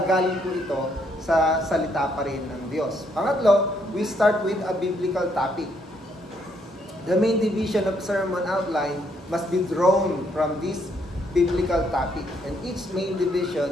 po ito sa salita pa rin ng Diyos. Pangatlo, we start with a biblical topic. The main division of sermon outline must be drawn from this biblical topic, and each main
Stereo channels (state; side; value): normal; both; correlation 0.72